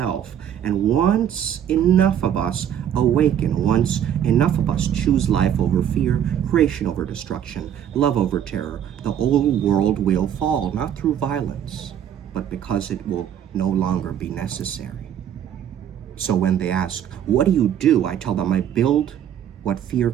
And once enough of us awaken, once enough of us choose life over fear, creation over destruction, love over terror, the old world will fall, not through violence, but because it will no longer be necessary. So when they ask, what do? I tell them I build what fear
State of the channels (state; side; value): quieter; left; 9.7 dB